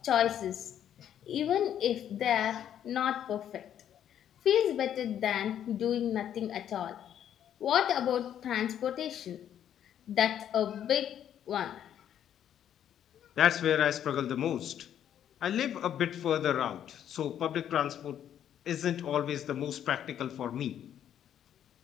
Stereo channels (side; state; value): right; quieter; 10.0 dB